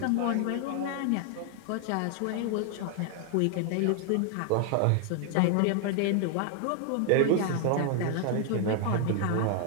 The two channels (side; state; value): both; different; correlation 0.00